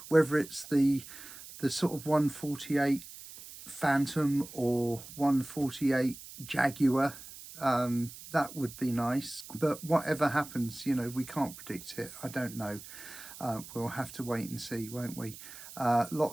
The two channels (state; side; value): noise; right; hiss, 15 dB below the sound